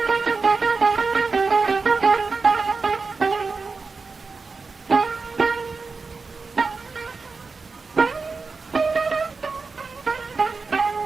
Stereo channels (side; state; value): left; quieter; 4.4 dB